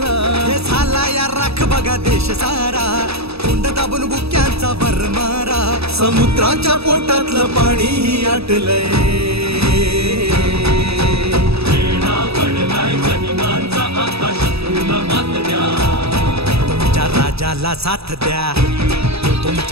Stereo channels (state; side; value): late; left; 0.78 ms